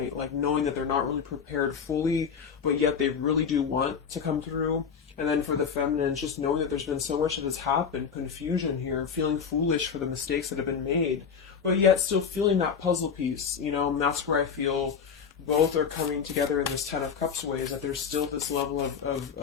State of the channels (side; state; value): right; quieter; 6.6 dB